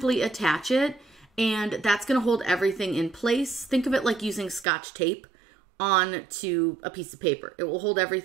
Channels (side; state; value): left; drops out; at 4.7 s